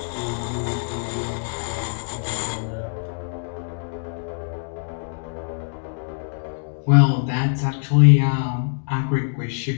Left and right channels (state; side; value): silent; right; digital silence